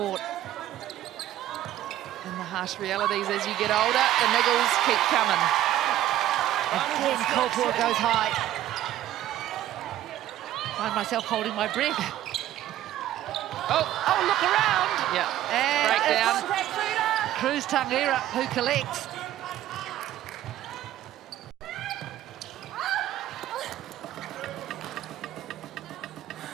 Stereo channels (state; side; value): quieter; left; 13.1 dB